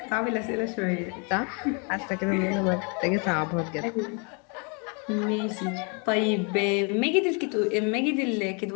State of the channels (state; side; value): quieter; right; 34.9 dB